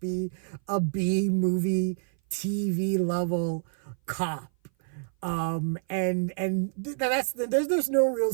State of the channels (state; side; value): silent; left; 57 dB below the other